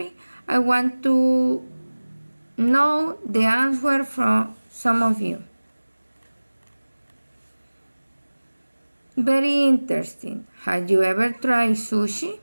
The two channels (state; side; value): inverted; both; correlation -1.00